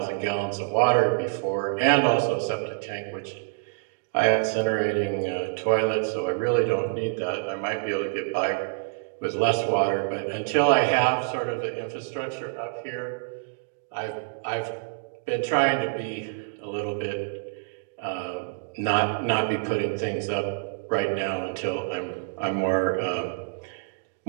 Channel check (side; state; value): left; silent; digital silence